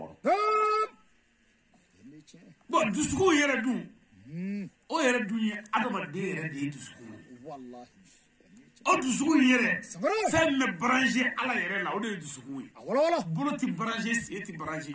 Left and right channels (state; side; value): identical; both; correlation 1.00